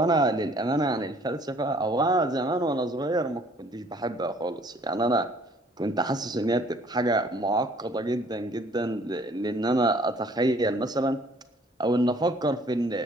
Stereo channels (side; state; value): both; normal; correlation 0.58